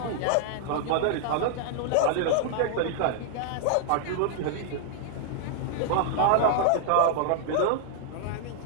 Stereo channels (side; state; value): both; different; correlation -0.01